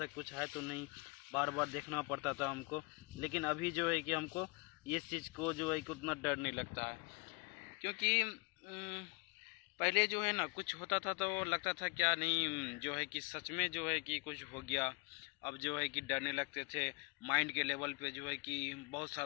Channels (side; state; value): right; quieter; 29.9 dB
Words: कुछ है तो नहीं, बार बार देखना पड़ता था हमको. लेकिन अभी जो है कि हमको ये चीज़ को जो है कि उतना डर नहीं लगता है, क्योंकि पहले जो है ना कुछ होता था तो लगता था क्या नहीं, जो है कि सच में जो है कि कुछ हो गया. अब जो है कि डरने लगते थे. माइंड के लेवल पे जो है कि बहुत